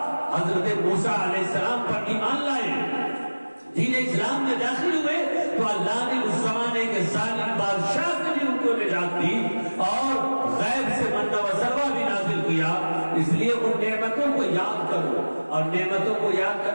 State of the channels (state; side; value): inverted; both; correlation -1.00